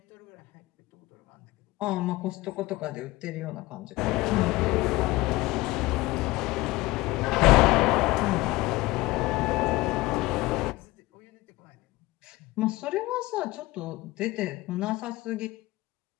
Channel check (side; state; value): right; quieter; 20.0 dB